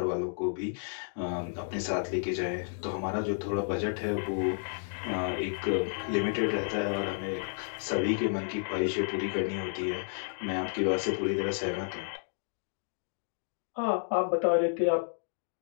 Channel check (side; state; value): right; silent; digital silence